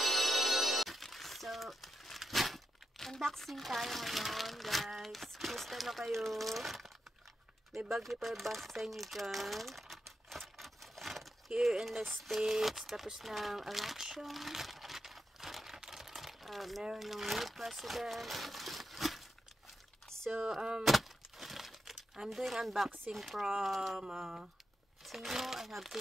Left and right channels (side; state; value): both; normal; correlation 0.87